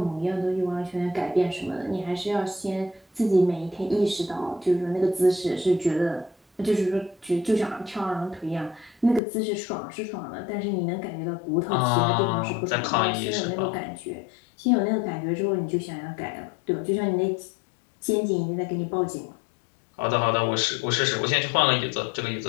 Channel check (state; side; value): drops out; right; at 9.2 s